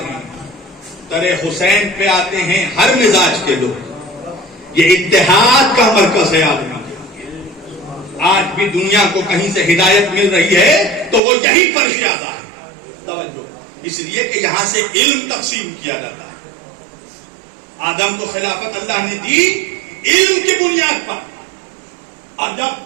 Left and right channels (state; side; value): drops out; left; at 11.2 s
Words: ہیں. ترے حسین پہ آتے ہیں ہر مزاج کے لوگ. یہ اتحاد کا مرکز ہے آدمی. آج بھی دنیا کو کہیں سے ہدایت مل رہی ہے تو وہ یہی فرش اعضاء ہے. توجہ، اس لیے کہ یہاں سے علم تقسیم کیا جاتا ہے. آدم کو خلافت اللہ نے دی علم کی بنیاد پر، اور